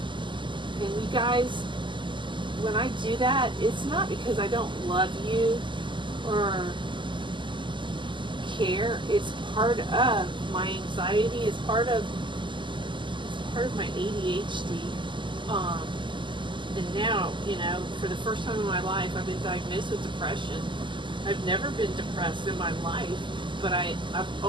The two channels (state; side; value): late; left; 0.24 ms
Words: And you guys, when I do that, it's not because I don't love you or care. It's part of my anxiety. It's part of my ADHD. And now, you know, for the first time in my life, I've been diagnosed with depression. I've never been depressed in my life, but I've